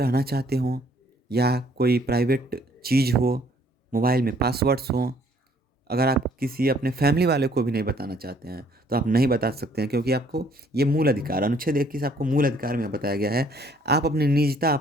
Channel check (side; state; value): both; normal; correlation 0.62